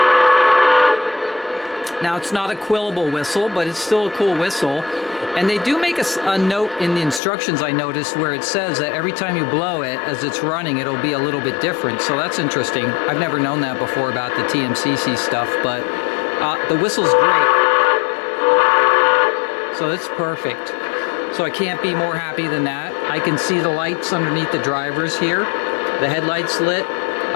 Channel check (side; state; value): right; drops out; at 7.2 s